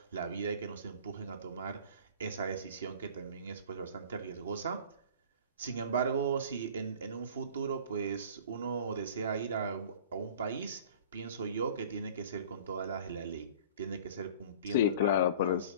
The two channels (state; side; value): inverted; both; correlation -0.43